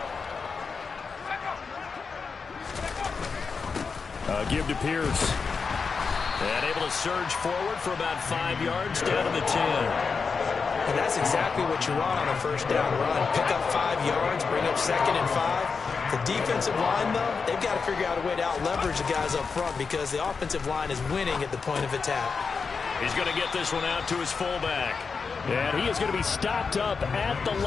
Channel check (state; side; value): quieter; right; 5.1 dB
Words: Give to Pierce. And able to surge forward for about 5 yards down to the 10. And that's exactly what you want on a 1st down run. Pick up 5 yards, bring up 2nd and 5. The defensive line, though, they've got to figure out a way to out-leverage the guys up front because the offensive line is winning at the point of attack. He's going to get this one out to his fullback. And he is going to be stopped up at the